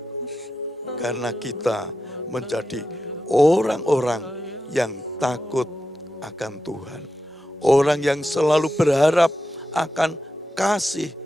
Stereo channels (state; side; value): normal; both; correlation 0.89